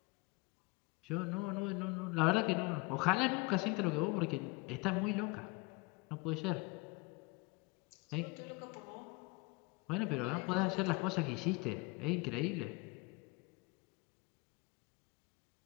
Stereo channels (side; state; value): right; quieter; 25.0 dB